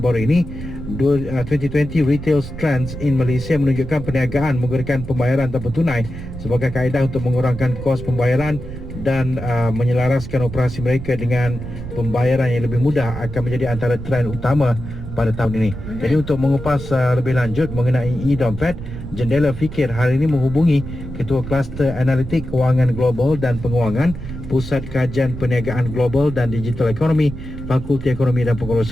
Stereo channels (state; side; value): noise; right; rumble, 10 dB below the sound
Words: ini 2020 Retail Trends in Malaysia menunjukkan perniagaan menggunakan pembayaran tanpa tunai sebagai kaedah untuk mengurangkan kos pembayaran dan menyelaraskan operasi mereka dengan pembayaran yang lebih mudah akan menjadi antara trend utama pada tahun ini. Jadi untuk mengupas lebih lanjut mengenai e-dompet, Jendela Fikir hari ini menghubungi Ketua Kluster Analitik Kewangan Global dan Penguangan Pusat Kajian Perniagaan Global dan Digital Ekonomi Fakulti Ekonomi dan